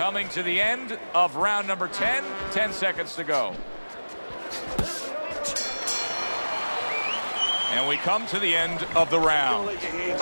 to the end of round number 10, 10 seconds to go. And we come to the end of the round. Don't let your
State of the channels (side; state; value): both; inverted; correlation -1.00